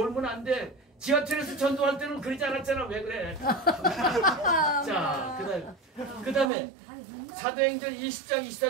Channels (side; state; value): left; drops out; at 6.5 s